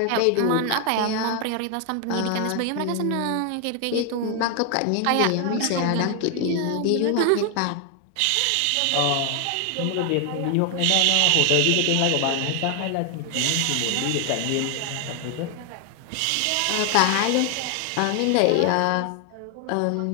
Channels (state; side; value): different; both; correlation 0.00